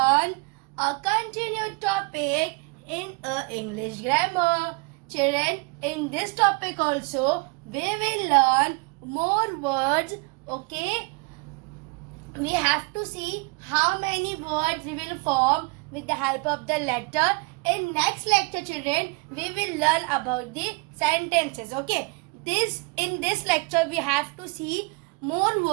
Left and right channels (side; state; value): left; quieter; 31.0 dB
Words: a continued topic in English grammar. Children, in this topic also, we will learn more words, okay? We have to see how many words we will form with the help of the letter. In next lecture, children, we will learn about the sentences, okay? In this lecture, we have to see more